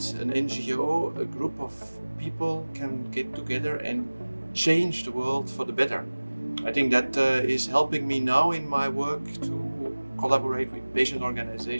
an NGO, a group of people can get together and change the world for the better. I think that is helping me now in my work to collaborate with patient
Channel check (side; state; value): both; inverted; correlation -1.00